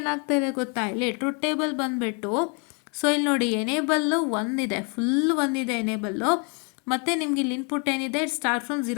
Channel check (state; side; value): quieter; right; 35.8 dB